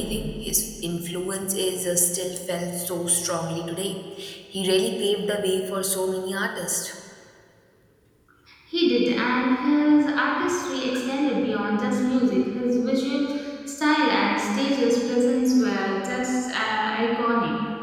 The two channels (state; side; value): identical; both; correlation 1.00